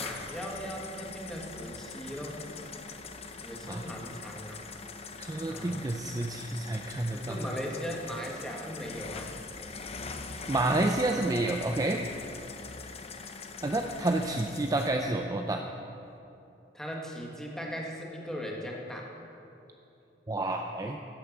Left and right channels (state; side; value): normal; both; correlation 0.59